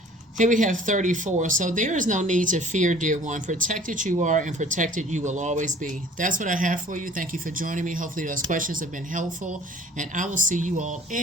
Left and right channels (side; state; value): both; normal; correlation 0.51